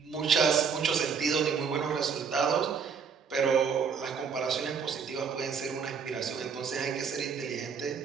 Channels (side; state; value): left; quieter; 6.2 dB